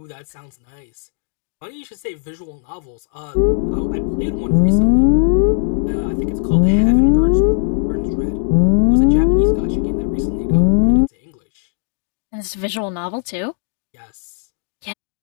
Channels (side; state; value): right; silent; digital silence